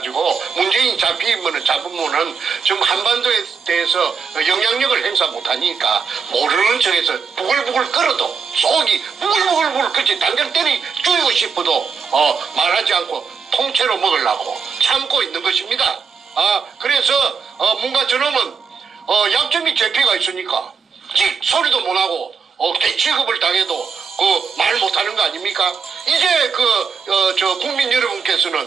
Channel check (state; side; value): quieter; left; 5.9 dB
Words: 문재인이 잡으면은 지금 한반도에 대해서 영향력을 행사 못하니까 모르는 척해서 부글부글 끓어도 속이 부글부글 그치 당장 때리 죽이고 싶어도 말하지 않고 통째로 먹으려고 참고 있는 것입니다. 그래서 뭔가 저놈은 약점이 제피가 있으니까 소리도 못하고 개취급을 당해도 말 못하는 거 아닙니까? 이제 국민